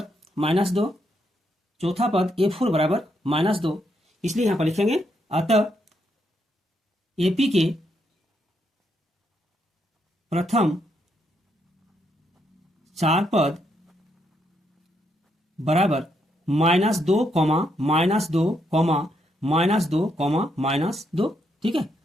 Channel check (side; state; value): both; normal; correlation 0.77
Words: -2, चौथा पद A4 बराबर -2। इसलिए यहाँ पर लिखेंगे अतः एपी के प्रथम 4 पद बराबर -2, -2, -2, -2। ठीक है,